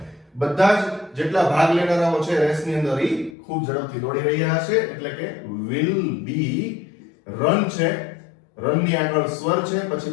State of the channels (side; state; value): right; drops out; at 3.4 s